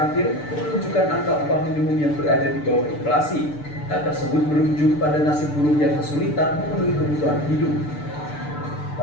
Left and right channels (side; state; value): right; late; 6.8 ms